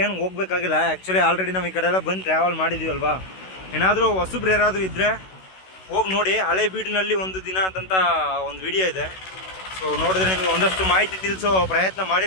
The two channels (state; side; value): late; right; 16 ms